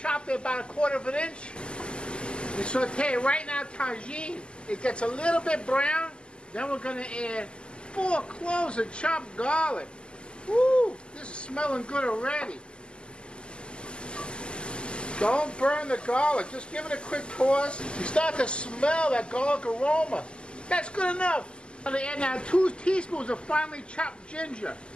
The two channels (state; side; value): late; right; 0.050 ms